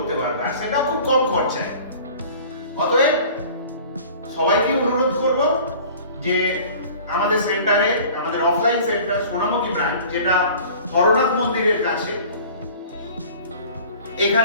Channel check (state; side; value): inverted; both; correlation -0.45